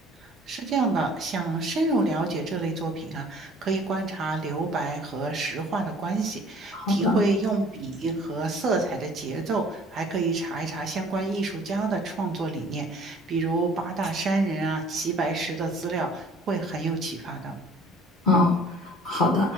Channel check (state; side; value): normal; both; correlation 0.53